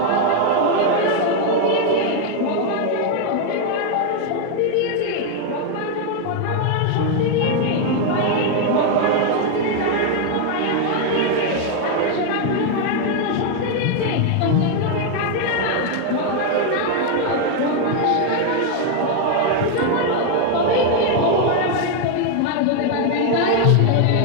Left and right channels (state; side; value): different; both; correlation 0.01